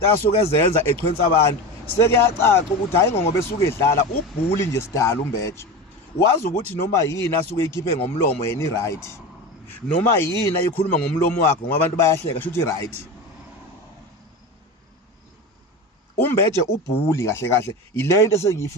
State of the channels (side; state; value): both; normal; correlation 0.26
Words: asuke ezenza echwensa abantu. Sekuyacaca ukuthi hayi ngoba esuke edlala ubhuli nje sidala uMbeje. Wazi ukuthi noma yini asuke ikhiphe ngomlomo yena i-right, noma yini ayikhuluma ngomlomo wakhe ngoba abantu bayahleka shuthi i-right. uMbeje ubhuli kahle kahle ile into